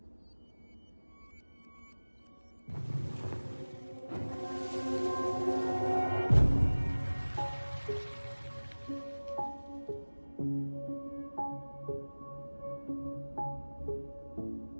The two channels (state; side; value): inverted; both; correlation -1.00